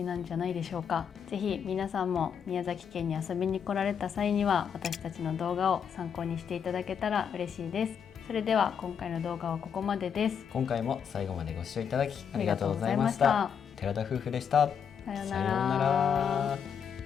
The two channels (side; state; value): right; quieter; 7.5 dB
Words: なんじゃないでしょうか。ぜひ皆さんも宮崎県に遊びに来られた際には、私たちの動画を参考にしていただけたら嬉しいです。それでは今回の動画はここまでです。今回も最後までご視聴いただきありがとうございました。寺田夫婦でした。さようなら。さようなら。